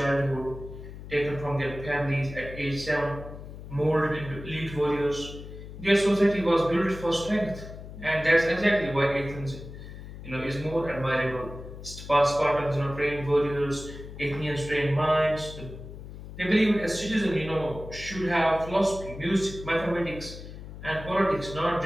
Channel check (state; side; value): noise; left; hum, 12 dB below the sound